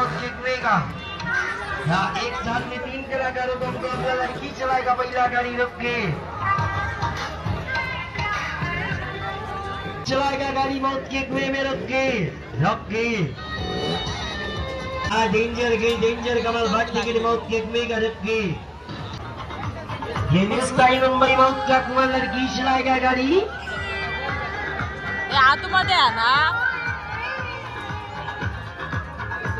जितवेगा। यहाँ एक साथ में 3 कलाकारों को मुकाबला लड़की चलाएगा। पहला गाड़ी रुक के चलाएगा, गाड़ी मौत के कुएं में रुक के डेंजर कमाल बात टिकट मौत के कुएं का रुक के। ये मिस्टाई मुंबई मौत का कुआं लड़की चलाएगा गाड़ी। आतमध्ये आहे ना,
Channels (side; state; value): both; identical; correlation 1.00